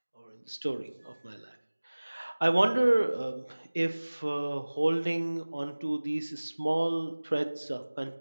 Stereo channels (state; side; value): inverted; both; correlation -1.00